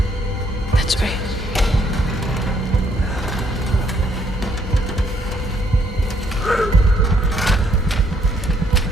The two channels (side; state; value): both; normal; correlation 0.69